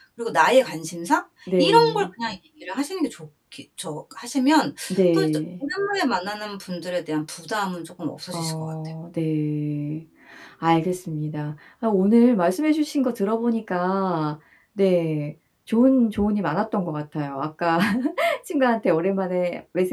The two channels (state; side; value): identical; both; correlation 1.00